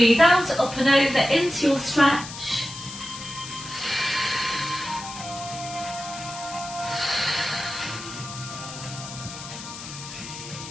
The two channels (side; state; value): left; noise; hiss, 11 dB below the sound